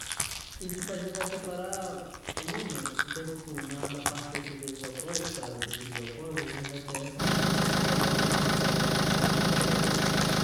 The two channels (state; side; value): identical; both; correlation 1.00